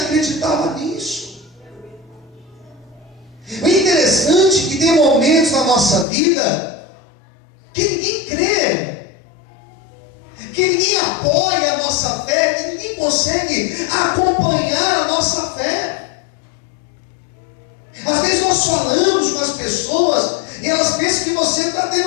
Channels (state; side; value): drops out; right; at 6.1 s